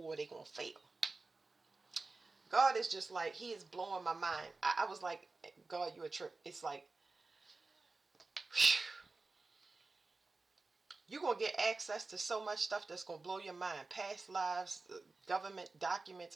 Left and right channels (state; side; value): quieter; left; 3.6 dB